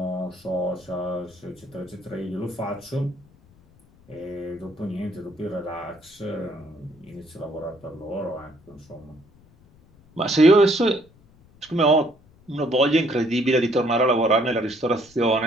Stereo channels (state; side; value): noise; left; rumble, 28 dB below the sound